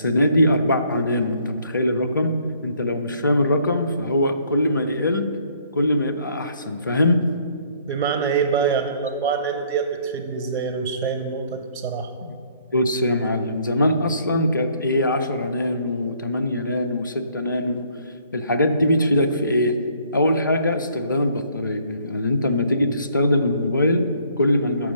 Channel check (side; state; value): both; inverted; correlation -0.63